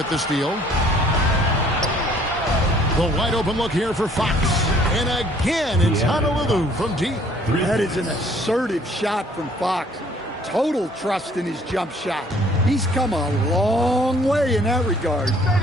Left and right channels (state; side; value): normal; both; correlation 0.59